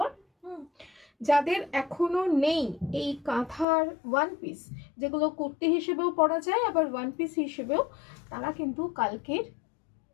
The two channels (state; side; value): drops out; right; at 3.7 s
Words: যাদের এখনো নেই এই কাঁথার ওয়ান পিস, যেগুলো কুর্তি হিসেবেও পরা যায় আবার ওয়ান পিস হিসেবেও, তারা কিন্তু কালকের